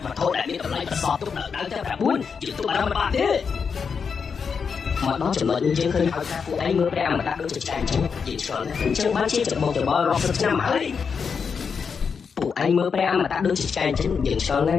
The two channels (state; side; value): quieter; right; 6.0 dB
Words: វត្ថុដែលមានតម្លៃប្រសពទុកនៅដៅទាំង9យើងទុកបារម្ភបានទេមកដល់ចំណុចនេះយើងឃើញហើយថាពួកឯងមើលព្រះអមតៈដូចជាឆ្កែអញ្ចឹងយើងឆ្លងអញ្ចឹងបានជាច្បងច្បល់រាប់សិបឆ្នាំហើយពួកឯងមើលព្រះអមតៈដូចជាឆ្កែអញ្ចឹងយើងឆ្លង